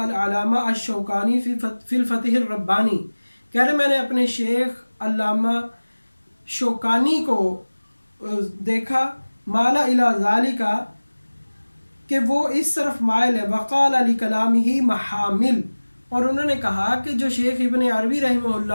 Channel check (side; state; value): both; inverted; correlation -1.00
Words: الْعَلَامَةَ الشَّوْكَانِي فِي الْفَتْحِ الرَّبَّانِي، کہہ رہے میں نے اپنے شیخ علامہ شوکانی کو دیکھا مالا الی ذالکا کہ وہ اس طرف مائل ہے، وقال علی کلامہ محامل، اور انہوں نے کہا کہ جو شیخ ابن عربی رحمہ